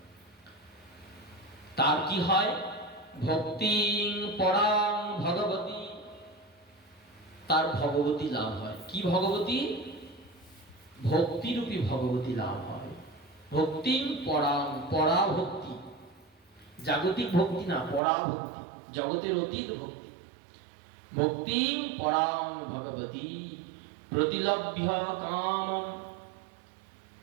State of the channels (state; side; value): drops out; left; at 18.0 s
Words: তার কি হয়? ভক্তিং পরাং ভগবতী, তার ভগবতী লাভ হয়। কি ভগবতী? ভক্তিরূপী ভগবতী লাভ হয়। ভক্তিং পরাং, পরা ভক্তি, জাগতিক ভক্তি না, পরা ভক্তি, জগতের অতীত ভক্তি। ভক্তিং পরাং ভগবতী প্রতিলভ্য কাম,